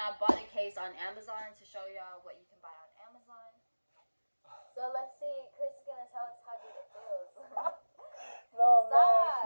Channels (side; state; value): both; inverted; correlation -1.00